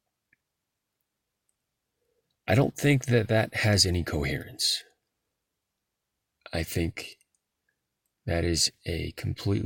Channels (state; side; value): identical; both; correlation 1.00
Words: I don't think that has any coherence. I think that is a